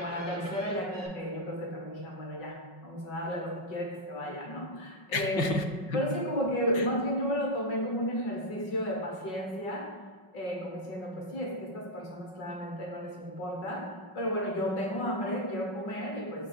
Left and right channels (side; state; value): right; late; 5.4 ms